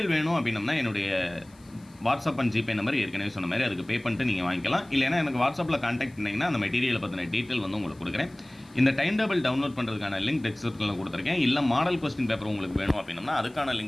வேணும் அப்படின்னம்னா என்னுடைய வாட்ஸ்அப் அண்ட் ஜிபே நம்பர் ஏற்கனவே சொன்ன மாதிரி அதுக்கு பே பண்ணிட்டு நீங்கள் வாங்கிக்கலாம். இல்லைனா எனக்கு வாட்ஸ்அப்பில் கான்டாக்ட் பண்ணிங்கன்னா அந்த மெட்டீரியலை பற்றின டீட்டெயில் வந்து உங்களுக்கு கொடுக்குறேன். இந்த டைம் டேபிள் டவுன்லோட் பண்ணுறதுக்கான லிங்க் டிஸ்கிரிப்ஷனில் கொடுத்துருக்கேன். இல்லை மாடல் கொஸ்டின் பேப்பர் உங்களுக்கு வேணும் அப்படின்னா அதுக்கான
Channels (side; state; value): left; noise; hiss, 29 dB below the sound